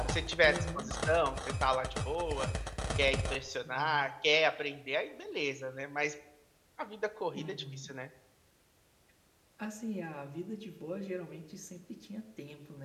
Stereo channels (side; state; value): both; identical; correlation 1.00